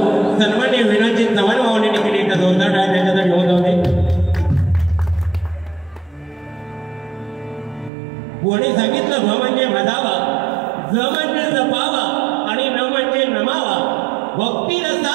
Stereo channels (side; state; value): left; drops out; at 7.9 s